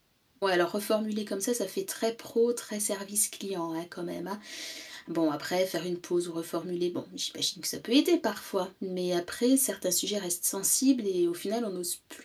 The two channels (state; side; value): identical; both; correlation 1.00